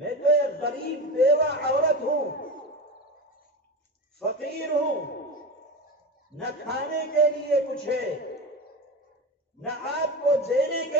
تو ایک غریب بیوہ عورت ہوں، فقیر ہوں، نہ کھانے کے لیے کچھ ہے، نہ آپ کو دینے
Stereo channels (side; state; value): both; normal; correlation 0.23